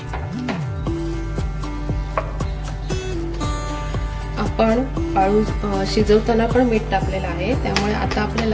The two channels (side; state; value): both; identical; correlation 1.00